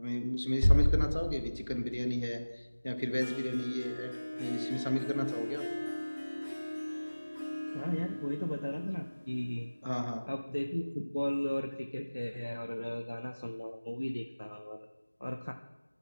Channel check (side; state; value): both; inverted; correlation -1.00